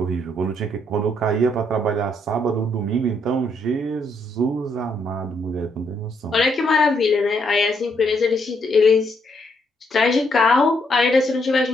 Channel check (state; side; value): normal; both; correlation 0.74